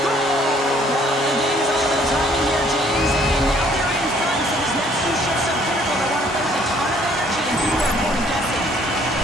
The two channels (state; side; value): normal; both; correlation 0.61